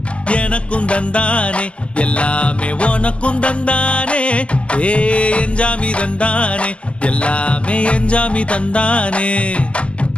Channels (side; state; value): right; late; 0.055 ms